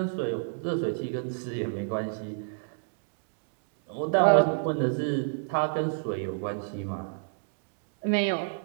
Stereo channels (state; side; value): silent; left; digital silence